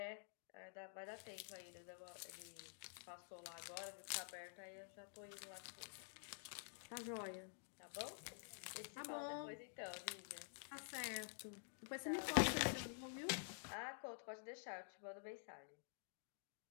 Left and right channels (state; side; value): silent; right; digital silence